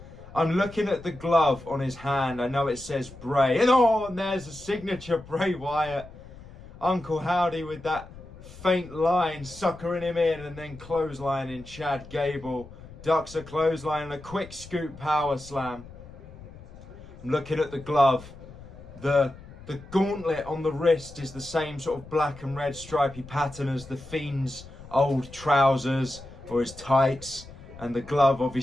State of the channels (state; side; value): noise; left; rumble, 17 dB below the sound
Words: I'm looking at the glove on his hand. I know it says Bray, and there's a signature Bray Wyatt. Uncle Howdy with that faint line, suckering him in, and then clotheslining Chad Gable. Ducks a clothesline and a quick scoop power slam. I'm looking at the glove. The gauntlet on the wrist is the same sort of black and red stripy pattern as the Fiend's old trousers or his tights. And the glove